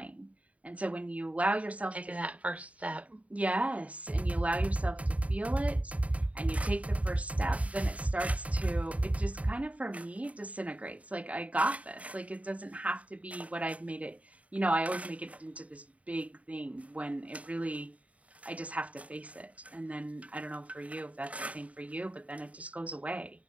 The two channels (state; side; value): late; left; 0.067 ms